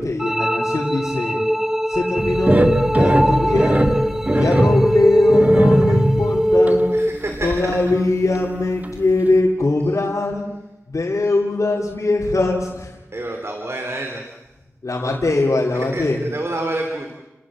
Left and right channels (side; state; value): both; normal; correlation 0.94